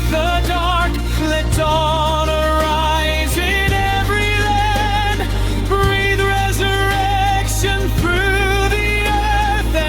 the dark, let dawn arise in every land. Breathe resurrection through the earth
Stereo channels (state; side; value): identical; both; correlation 1.00